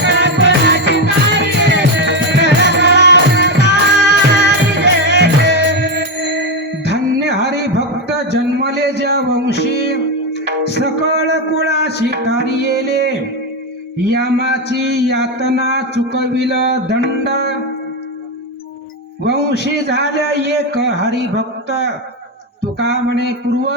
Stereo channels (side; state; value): both; normal; correlation 0.09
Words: धन्य हरी भक्त जन्मले ज्या वंशी, सकळ कुळाशी कार्યેले, यामाची यातना चुकविल दंड, वंशी झाल्या एक हरिभक्त. तुका म्हणे